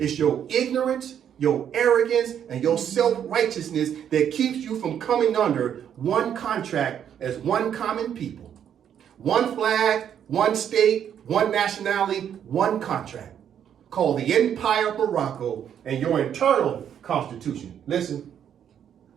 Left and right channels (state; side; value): quieter; left; 9.1 dB